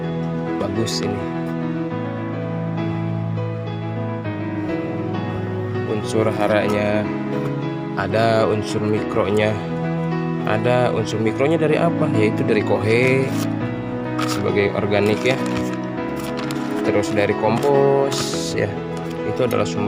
bagus ini. Unsur haranya ada, unsur mikronya ada. Unsur mikronya dari apa? Yaitu dari kohe sebagai organik ya, terus dari kompos ya, itu adalah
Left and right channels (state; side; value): identical; both; correlation 1.00